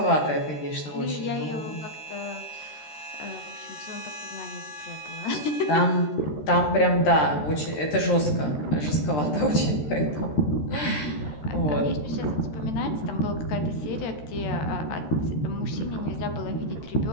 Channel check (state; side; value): late; right; 13 ms